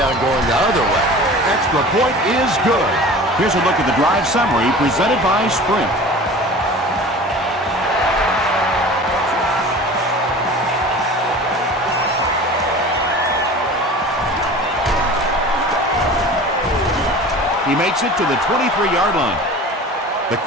going the other way. Extra point is good. Here's a look at the drive summary presented by Sprint. He makes it to the 23-yard line. The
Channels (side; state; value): both; normal; correlation 0.39